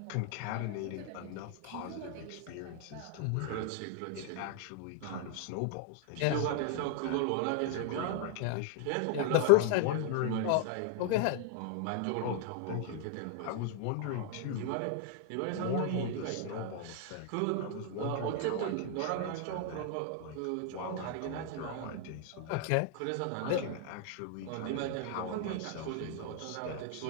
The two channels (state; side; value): different; both; correlation 0.00